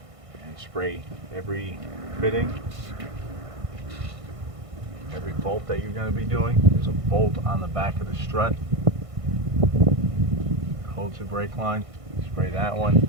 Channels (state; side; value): late; left; 1.5 ms